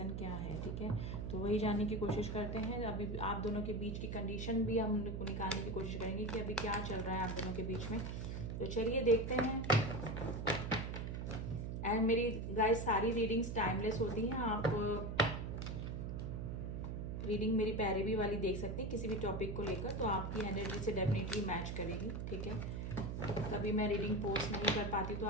क्या है। ठीक है, तो वही जानने की कोशिश करते हैं। अभी आप दोनों के बीच की कंडीशन भी हम निकालने की कोशिश करेंगे कि अभी क्या चल रहा है आप दोनों के बीच में। तो चलिए देखते हैं। एंड मेरी गाइस सारी रीडिंग्स टाइमलेस होती हैं। आप रीडिंग मेरी पैरवी वाली देख सकते हैं किसी भी टॉपिक को लेकर, तो आपकी एनर्जी से डेफिनेटली मैच करेगी। ठीक है, कभी मैं रीडिंग पोस्ट नहीं कर पाती तो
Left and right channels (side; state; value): right; noise; hum, 4 dB below the sound